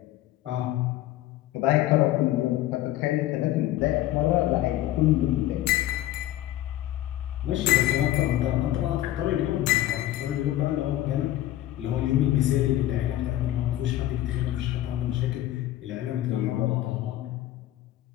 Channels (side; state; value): right; quieter; 14.2 dB